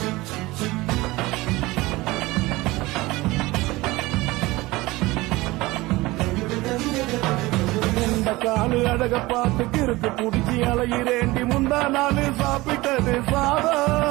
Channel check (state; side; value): quieter; left; 20.4 dB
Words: காலு அழக பார்த்து கிறுக்கு புடிச்சி அலையிறேண்டி. முந்தா நாள் சாப்பிட்டது